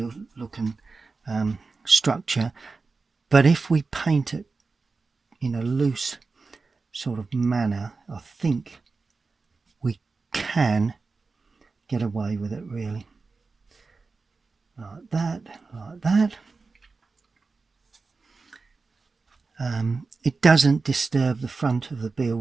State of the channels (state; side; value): quieter; left; 4.2 dB